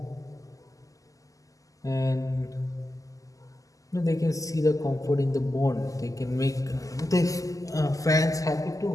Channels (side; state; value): right; late; 0.17 ms